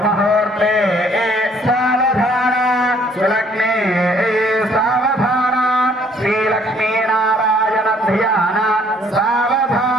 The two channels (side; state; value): both; normal; correlation 0.62